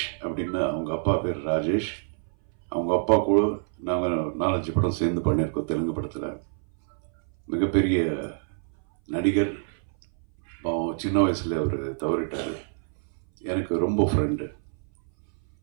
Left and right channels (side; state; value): left; silent; 59 dB below the other